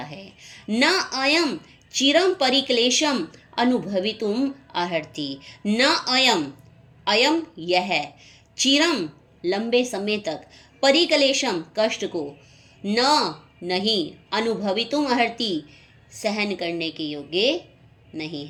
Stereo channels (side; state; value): both; identical; correlation 1.00